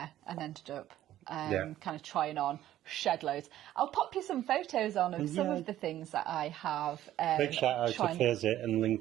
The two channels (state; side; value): quieter; left; 13.1 dB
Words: and ended up kind of trying on shed loads. I'll pop you some photos on of some of the things that I have. Big shout out to Phase 8 and